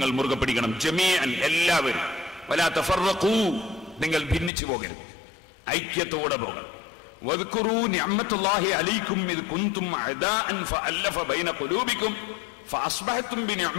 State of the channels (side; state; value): right; drops out; at 4.5 s